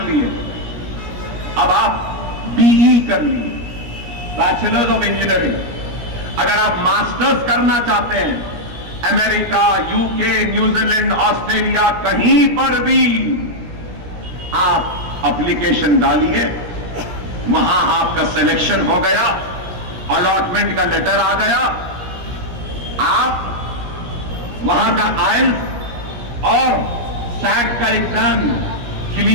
لیے، اب آپ بی ای کر لیے، بیچلرز آف انجینئرنگ، اگر آپ ماسٹرز کرنا چاہتے ہیں، امریکہ، یو کے، نیوزی لینڈ، آسٹریلیا، کہیں پر بھی آپ اپلیکیشن ڈالیے، وہاں آپ کا سلیکشن ہو گیا، الاٹمنٹ کا لیٹر آ گیا، آپ وہاں کا آئلٹس اور سیٹ کا ایگزام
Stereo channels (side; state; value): left; late; 17 ms